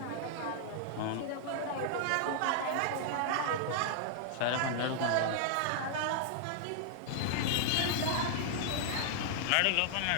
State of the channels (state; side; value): different; both; correlation -0.01